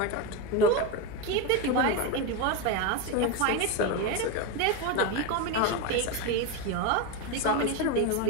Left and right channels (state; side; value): different; both; correlation 0.05